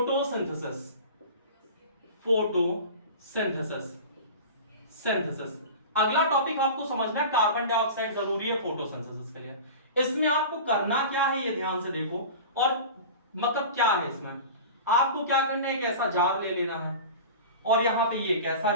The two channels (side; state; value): both; inverted; correlation -0.34